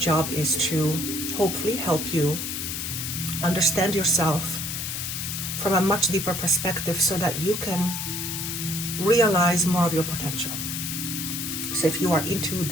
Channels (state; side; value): noise; left; hiss, 4 dB below the sound